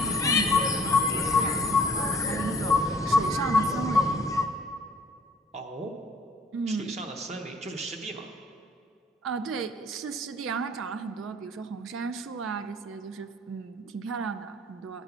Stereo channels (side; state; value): both; normal; correlation 0.55